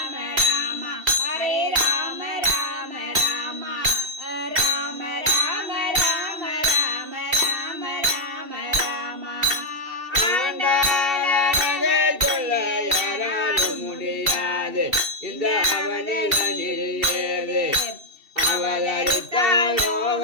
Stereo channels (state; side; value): late; left; 2.7 ms